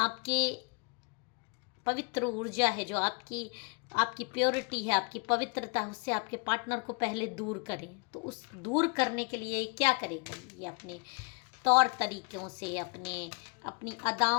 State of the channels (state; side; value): quieter; right; 32.4 dB